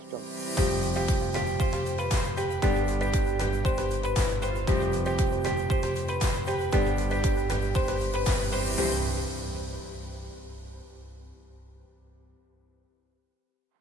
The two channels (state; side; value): normal; both; correlation 0.66